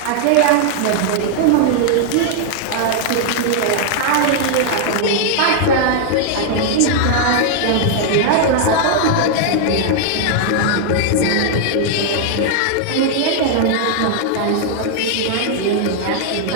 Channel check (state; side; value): different; both; correlation -0.01